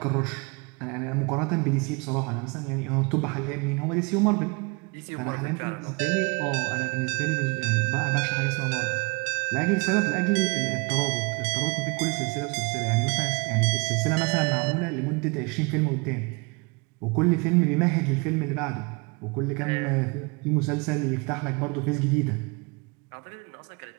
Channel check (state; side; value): quieter; left; 29.3 dB